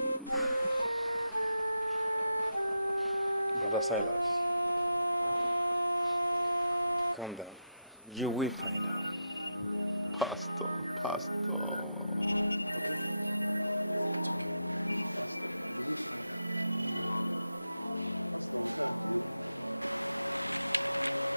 Brother Silas, calm down. You will find her. Pastor.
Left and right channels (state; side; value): inverted; both; correlation -0.85